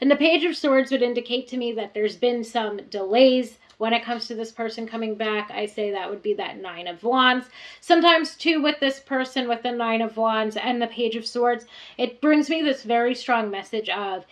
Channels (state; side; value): identical; both; correlation 1.00